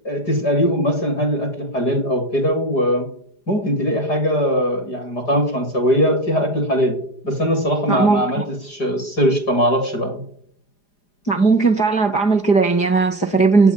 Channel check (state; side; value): late; right; 4.9 ms